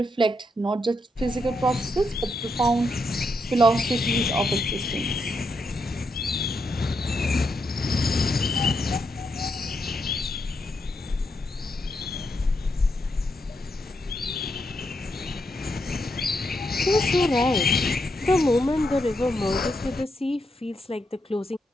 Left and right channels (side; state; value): both; normal; correlation 0.81